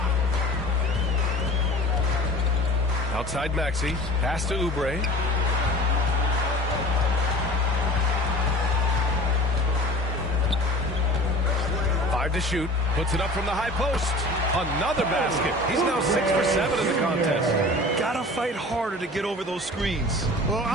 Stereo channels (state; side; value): normal; both; correlation 0.41